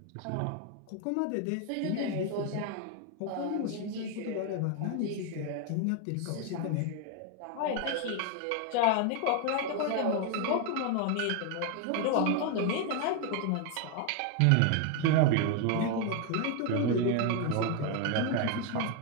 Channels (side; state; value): both; different; correlation 0.01